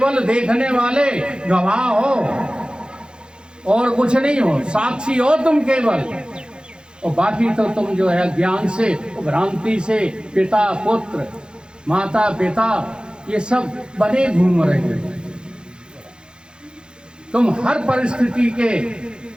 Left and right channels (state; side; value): late; left; 0.049 ms